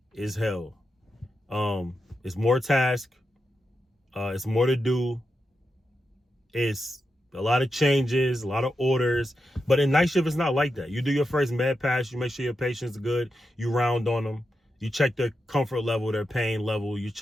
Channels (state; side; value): normal; both; correlation 0.88